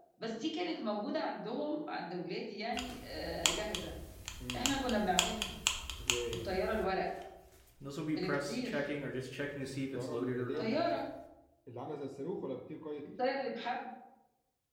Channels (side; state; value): both; identical; correlation 1.00